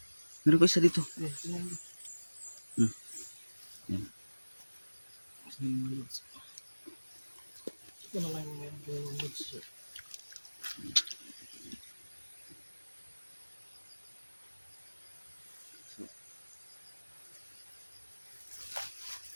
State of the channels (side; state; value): both; inverted; correlation -1.00